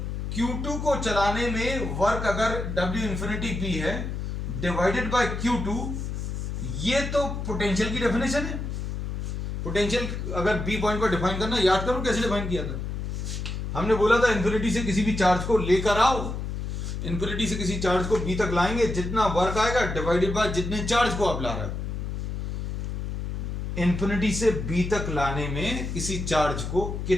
Q2 को चलाने में वर्क अगर W इंफिनिटी बी है डिवाइडेड बाय Q2, ये तो पोटेंशियल की डेफिनेशन है। पोटेंशियल अगर बी पॉइंट को डिफाइन करना, याद करो कैसे डिफाइन किया था। हमने बोला था इन्फिनिटी से किसी भी चार्ज को लेकर आओ, इन्फिनिटी से किसी चार्ज को बी तक लाएंगे, जितना वर्क आएगा डिवाइडेड बाय जितने चार्ज को आप ला रहे हो। इन्फिनिटी से बी तक लाने में किसी चार्ज को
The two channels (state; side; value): noise; left; hum, 4 dB below the sound